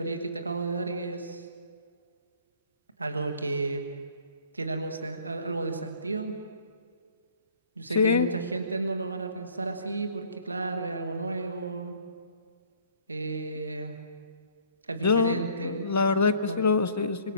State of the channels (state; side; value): inverted; both; correlation -0.55